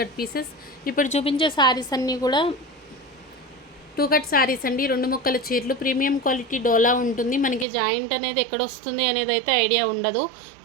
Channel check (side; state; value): left; drops out; at 7.7 s